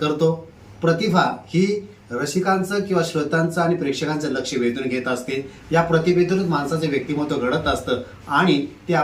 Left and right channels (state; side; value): identical; both; correlation 1.00